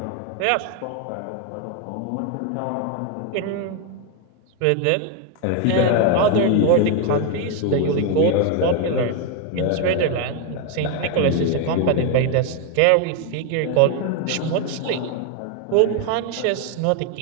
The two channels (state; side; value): different; both; correlation 0.01